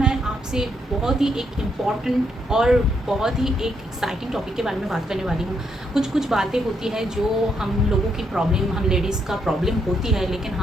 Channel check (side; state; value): both; normal; correlation 0.76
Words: आपसे बहुत ही एक इम्पॉर्टेंट और बहुत ही एक एक्साइटिंग टॉपिक के बारे में बात करने वाली हूँ। कुछ बातें होती है जो हम लोगों की प्रॉब्लम, हम लेडीज़ का प्रॉब्लम होती है, लेकिन